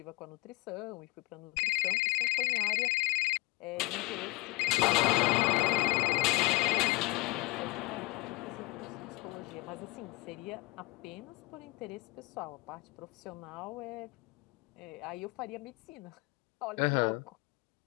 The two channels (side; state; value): right; quieter; 24.3 dB